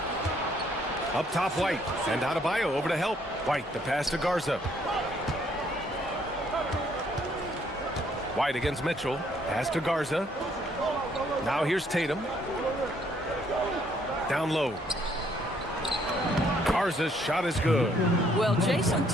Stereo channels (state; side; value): normal; both; correlation 0.67